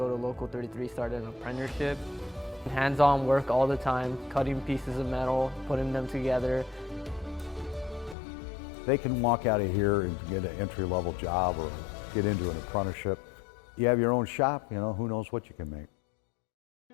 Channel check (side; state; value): right; drops out; at 8.2 s